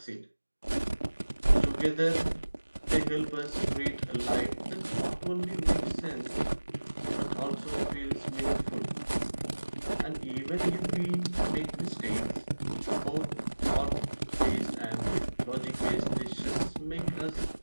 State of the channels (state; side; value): inverted; both; correlation -1.00